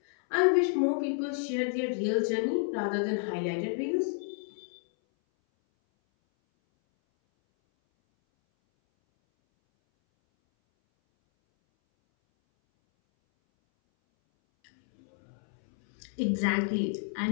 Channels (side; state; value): right; silent; 58 dB below the other